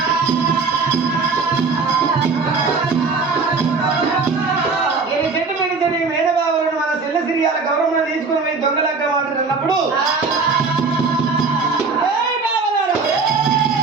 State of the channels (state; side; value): quieter; left; 4.4 dB